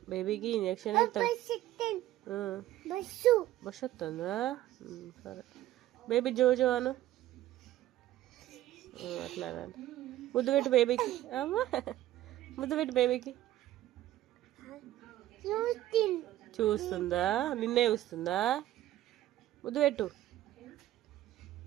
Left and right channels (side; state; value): left; quieter; 14.3 dB